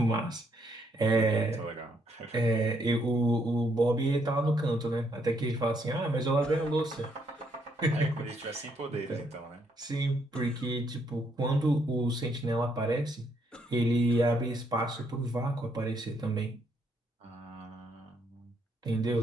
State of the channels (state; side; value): normal; both; correlation 0.73